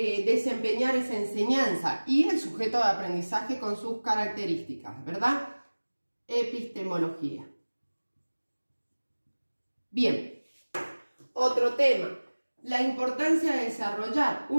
esa enseñanza, y el sujeto de aprendizaje con sus características, ¿verdad? Epistemología. Bien, otro tema, la importancia de desarrollar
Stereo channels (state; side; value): inverted; both; correlation -1.00